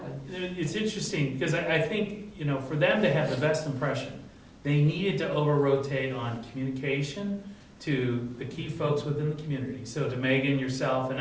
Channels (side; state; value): both; identical; correlation 1.00